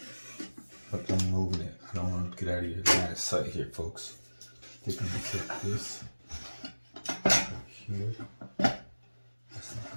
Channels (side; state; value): both; inverted; correlation -1.00